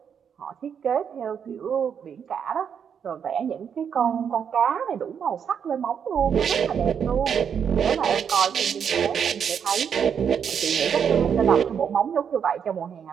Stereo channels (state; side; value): quieter; left; 7.6 dB